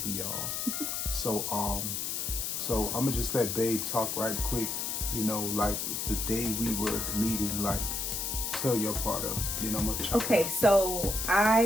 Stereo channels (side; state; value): left; noise; hiss, 2 dB below the sound